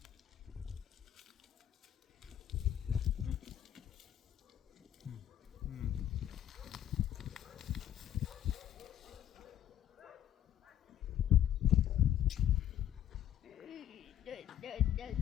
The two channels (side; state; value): right; quieter; 11.1 dB